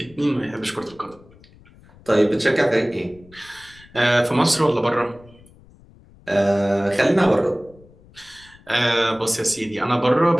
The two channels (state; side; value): noise; left; rumble, 26 dB below the sound